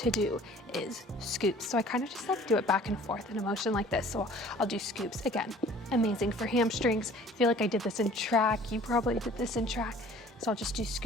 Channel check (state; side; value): normal; both; correlation 0.50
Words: do is scoops. So I kind of just like do it back and forth in a motion like this. So I'll do scoops. Again, amazing for hamstrings. I feel like I did this in track. You probably did this in track. So I'll just do